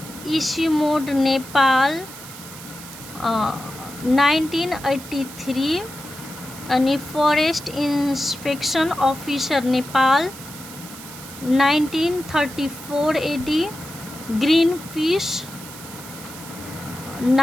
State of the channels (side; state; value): right; noise; hiss, 15 dB below the sound